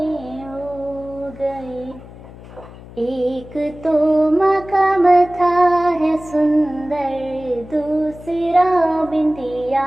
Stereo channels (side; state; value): left; noise; hum, 18 dB below the sound